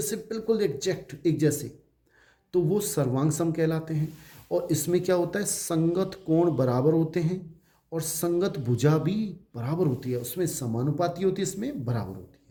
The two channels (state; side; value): identical; both; correlation 1.00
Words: बिल्कुल एग्जैक्ट एक जैसे, तो वो सर्वांग सम कहलाते हैं। और इसमें क्या होता है? संगत कोण बराबर होते हैं और संगत भुजा भी बराबर होती है, उसमें समानुपाती होती है, इसमें बराबर होती